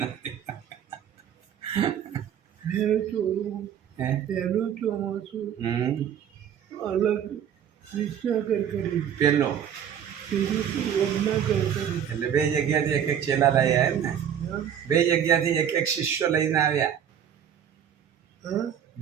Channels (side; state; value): left; quieter; 9.0 dB